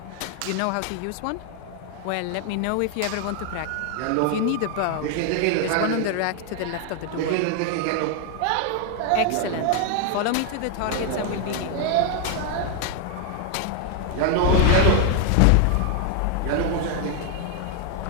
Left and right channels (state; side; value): different; both; correlation 0.00